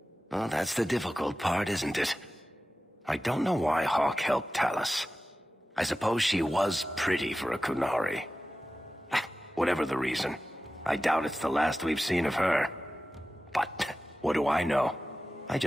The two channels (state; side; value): normal; both; correlation 0.94